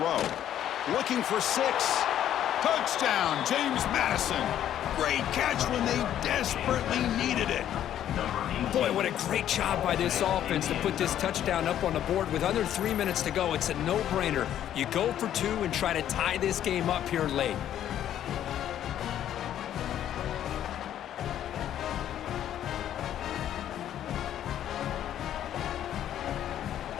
Looking for 6. Touchdown, James Madison. Great catch when they desperately needed it. Boy, what a great job by this offense to put this touchdown up on the board with under 3 minutes to go. It's a no-brainer. You go for 2 and try to tie this game up here late.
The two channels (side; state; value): right; quieter; 11.0 dB